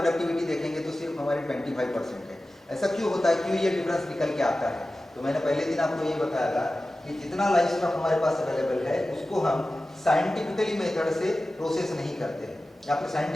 देखेंगे तो सिर्फ हमारी 25% है। ऐसा क्यों होता है, क्यों ये डिफरेंस निकल के आता है? तो मैंने पहले दिन आपको ये बताया था कि जितना लाइफ स्टॉक हमारे पास अवेलेबल है उसको हम साइंटिफिकली मेथड से प्रोसेस नहीं करते हैं या फिर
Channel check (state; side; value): normal; both; correlation 0.95